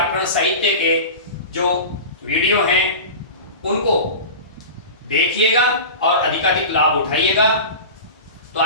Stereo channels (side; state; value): both; inverted; correlation -0.31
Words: साहित्य के जो वीडियो हैं उनको देखिएगा और अधिकाधिक लाभ उठाइएगा। तो